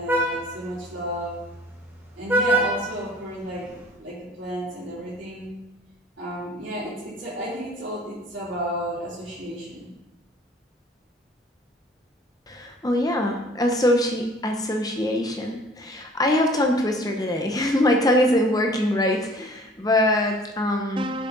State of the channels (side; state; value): both; normal; correlation 0.51